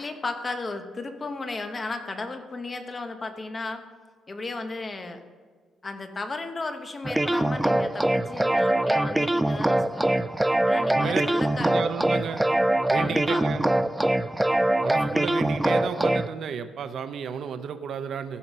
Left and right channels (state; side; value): normal; both; correlation 0.95